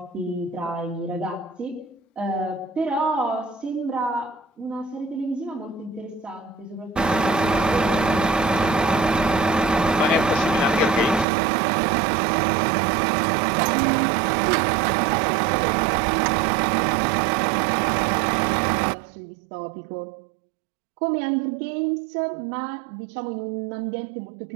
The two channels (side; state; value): left; drops out; at 11.2 s